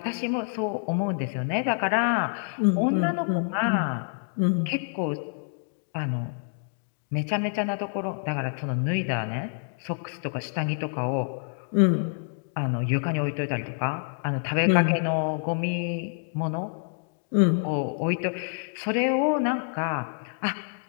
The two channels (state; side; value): silent; right; digital silence